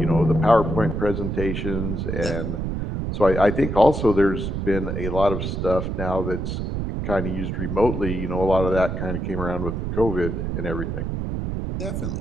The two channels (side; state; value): right; noise; rumble, 3 dB below the sound